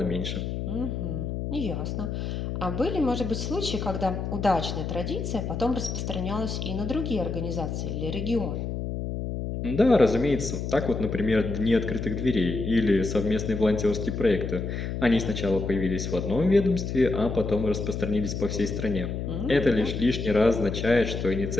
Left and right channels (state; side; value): noise; left; hum, 4 dB below the sound